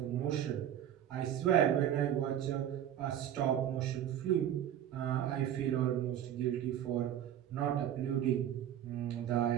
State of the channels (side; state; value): left; quieter; 10.7 dB